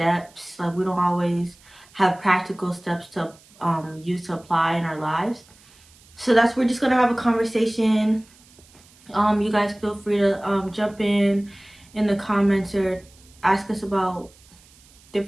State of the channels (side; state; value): right; noise; hiss, 27 dB below the sound